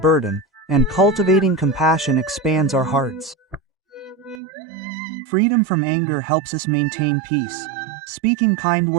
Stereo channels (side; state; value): left; drops out; at 4.4 s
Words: and cultivating compassion expands our hearts. Freedom from anger helps us maintain peace. Speaking kind